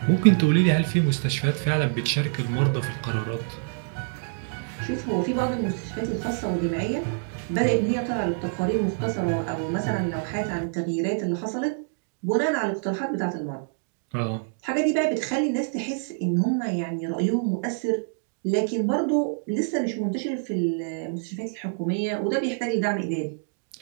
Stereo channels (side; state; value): left; silent; digital silence